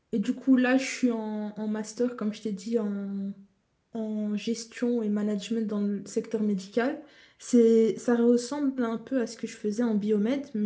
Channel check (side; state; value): both; identical; correlation 1.00